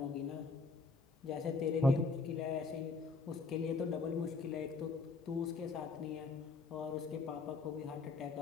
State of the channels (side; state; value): right; quieter; 4.2 dB